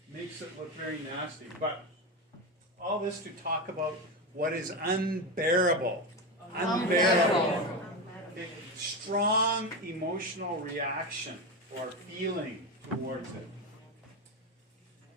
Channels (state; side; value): normal; both; correlation 0.17